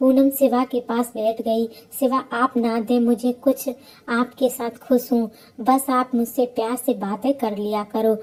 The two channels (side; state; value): both; identical; correlation 1.00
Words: शिवा के पास बैठ गई। शिवा आप ना दे मुझे कुछ, आपके साथ खुश हूँ। बस आप मुझसे प्यार से बातें कर लिया करो,